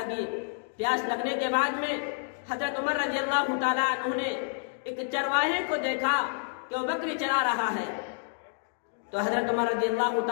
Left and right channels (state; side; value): silent; right; digital silence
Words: پیاس لگنے کے بعد میں حضرت عمر رضی اللہ تعالیٰ عنہ نے ایک چرواہے کو دیکھا کہ وہ بکری چرا رہا ہے، تو حضرت عمر رضی اللہ